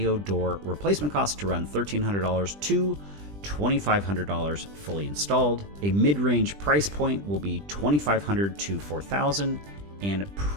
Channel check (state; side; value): late; left; 20 ms